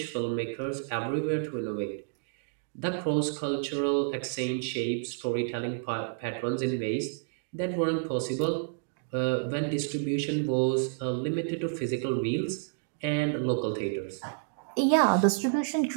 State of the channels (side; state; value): left; silent; digital silence